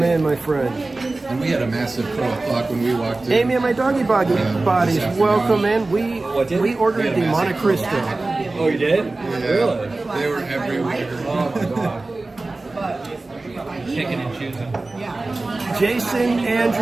in, my friend. And we had a massive pro o'clock when we walked in. Amy and my doggy bodies, this afternoon. welcome in. We ordered We had the a Monte massive Cristo. Oh, you did? Yeah, Really? they were everywhere. Oh my god. Picking and choosing. Jason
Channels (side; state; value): left; quieter; 3.2 dB